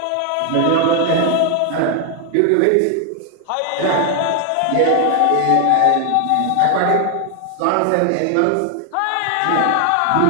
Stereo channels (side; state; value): both; different; correlation 0.00